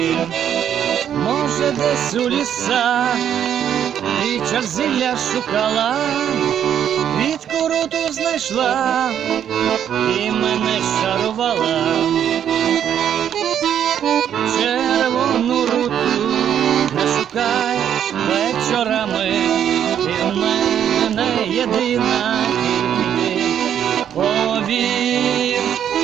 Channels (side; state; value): left; quieter; 9.4 dB